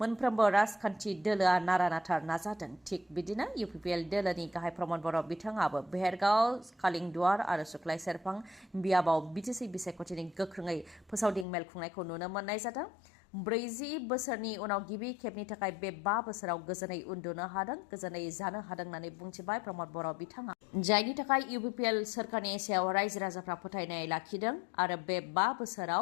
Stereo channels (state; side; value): drops out; right; at 11.5 s